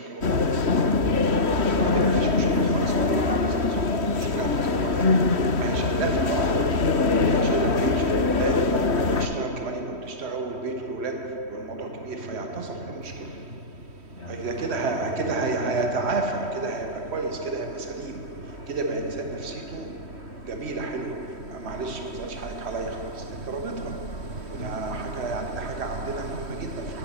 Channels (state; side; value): late; left; 3.1 ms